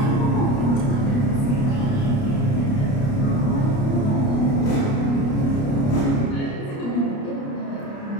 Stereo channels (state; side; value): late; right; 29 ms